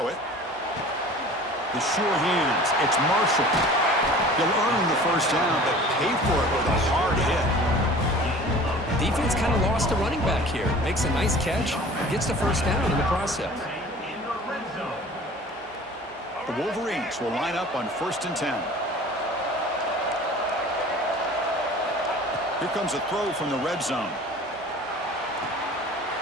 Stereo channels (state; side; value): normal; both; correlation 0.44